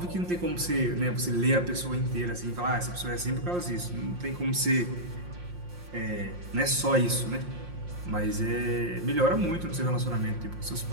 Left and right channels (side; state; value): left; late; 5.6 ms